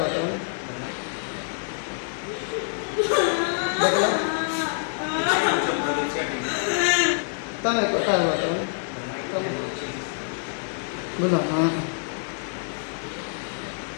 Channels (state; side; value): silent; right; digital silence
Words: तो देखला तमे कथा हुआ तो बोलो हां